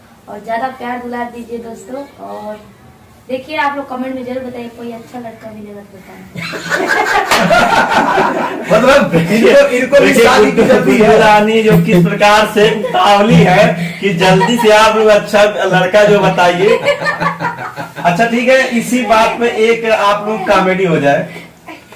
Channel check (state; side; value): identical; both; correlation 1.00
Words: और ज्यादा प्यार दुलार दीजिए दोस्तों। और देखिए आप लोग कमेंट में जरूर बताइए कोई अच्छा लड़का मिलेगा तो बताएं। मतलब इनको भी शादी की जल्दी है। रानी जो किस प्रकार से उतावली है कि जल्दी से आप लोग अच्छा लड़का जो बताइए। अच्छा ठीक है, इसी बात पे एक आप लोग कॉमेडी हो जाए।